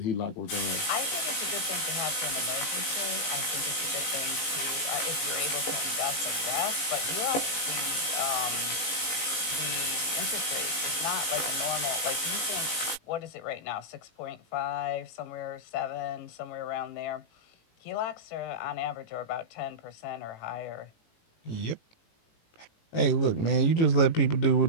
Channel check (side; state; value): right; late; 18 ms